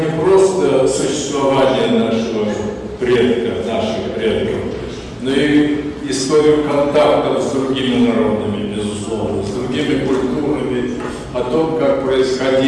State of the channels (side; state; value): both; identical; correlation 1.00